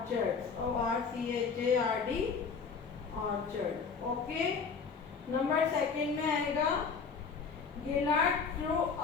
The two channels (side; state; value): right; quieter; 5.4 dB